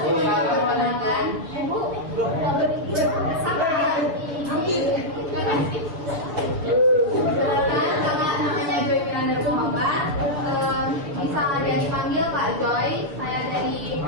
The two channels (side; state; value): left; late; 7.2 ms